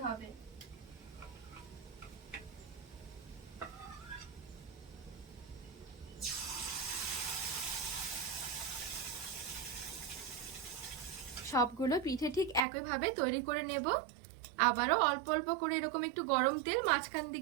হবে। সবগুলো পিঠে ঠিক একইভাবে তৈরি করে নেব। আবারও অল্প অল্প করে এরকম একটু গরম তেল মাঝখান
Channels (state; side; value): drops out; left; at 12.6 s